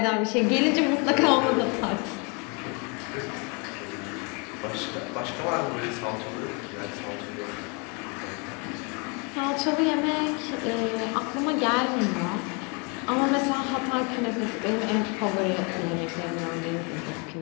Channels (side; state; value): right; quieter; 32.9 dB